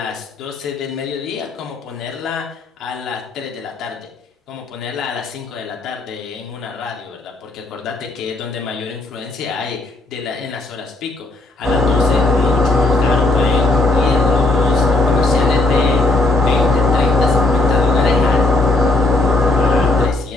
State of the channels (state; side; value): quieter; right; 3.0 dB